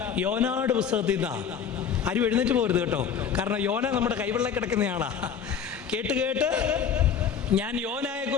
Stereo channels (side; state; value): right; quieter; 7.4 dB